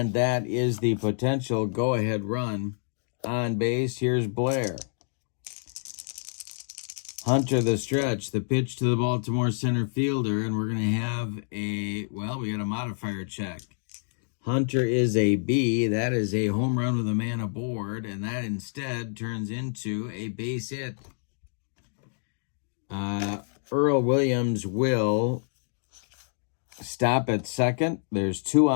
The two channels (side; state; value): right; silent; digital silence